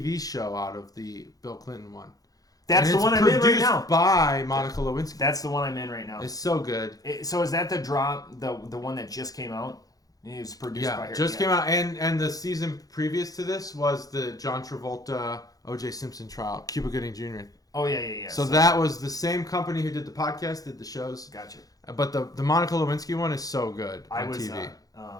show out of the Bill Clinton one. That's the one I'm in right now. Produced by Monica Lewinsky. That's the one I'm in right now. It's so good. So is that the one that just came out? It was produced by her. Came out, and the season previous to this was the John Travolta O.J. Simpson trial, Cuba Gooding Jr. Oh yeah. So that was the same company who did the podcast, did the shows. Gotcha. But the Monica Lewinsky one is so good on TV.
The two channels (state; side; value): late; right; 0.18 ms